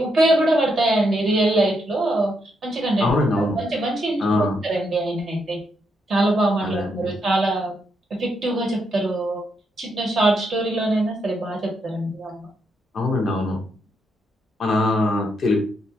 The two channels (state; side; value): normal; both; correlation 0.79